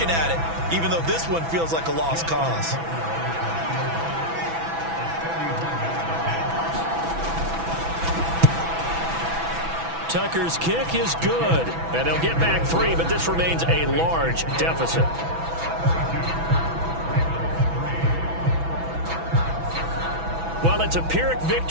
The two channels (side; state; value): left; late; 6.0 ms